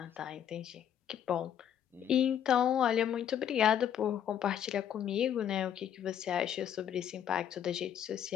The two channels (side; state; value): right; quieter; 9.6 dB